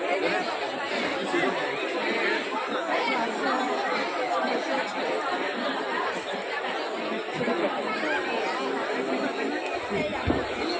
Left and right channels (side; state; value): both; identical; correlation 1.00